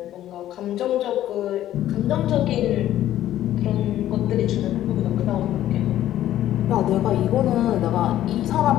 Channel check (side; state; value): right; quieter; 12.8 dB